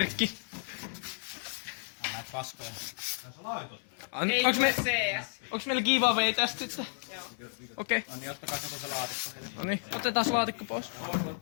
Näitä paskoja. Onks meillä giveaway tästä sitten? Joo. Okei. No niin, ottakaa kato se laatikko heille. No niin, otetaan laatikko pois.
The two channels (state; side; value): silent; right; 56 dB below the other